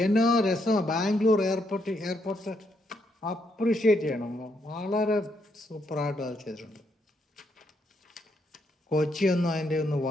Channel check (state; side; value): normal; both; correlation 0.76